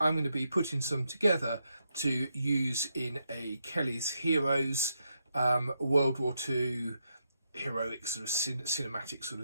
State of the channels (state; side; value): inverted; both; correlation -0.82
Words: going to be putting some together to use in a Kelly's Heroes World War II heroic sort of cinematic sort